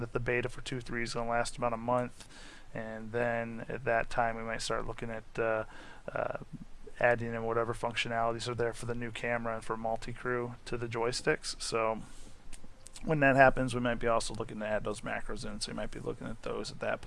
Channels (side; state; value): both; identical; correlation 1.00